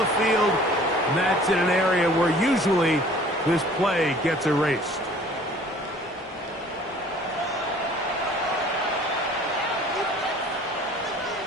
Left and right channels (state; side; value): normal; both; correlation 0.51